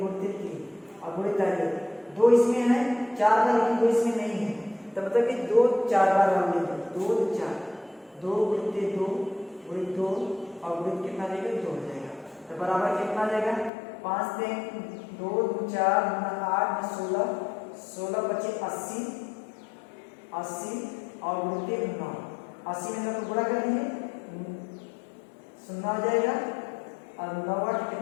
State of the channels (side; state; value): right; drops out; at 13.7 s